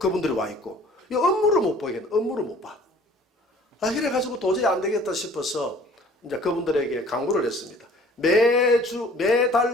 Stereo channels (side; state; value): both; normal; correlation 0.51